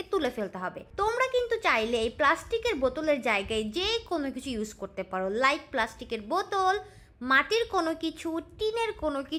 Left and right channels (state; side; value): identical; both; correlation 1.00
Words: তুলে ফেলতে হবে। তোমরা কিন্তু চাইলে এই প্লাস্টিকের বোতলের জায়গায় যে কোনো কিছু ইউজ করতে পারো, লাইক প্লাস্টিকের বোতল, মাটির কোনো কিছু, টিনের কোনো